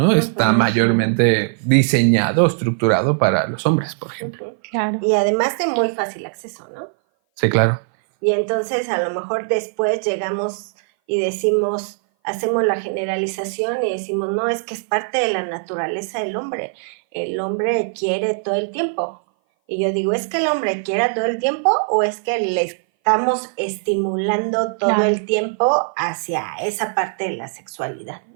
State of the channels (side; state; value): left; silent; 58 dB below the other